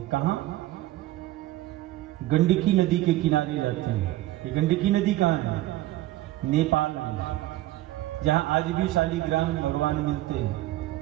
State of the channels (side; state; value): left; quieter; 15.9 dB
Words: कहां? गंडकी नदी के किनारे रहते हैं। ये गंडकी नदी कहां है? नेपाल में। जहां आज भी शालिग्राम में भगवान मिलते हैं,